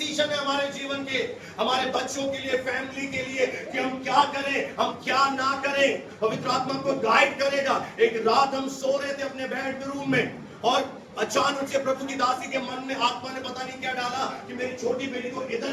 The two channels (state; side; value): identical; both; correlation 1.00